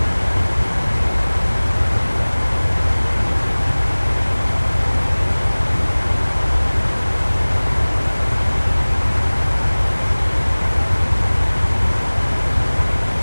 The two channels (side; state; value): both; inverted; correlation -1.00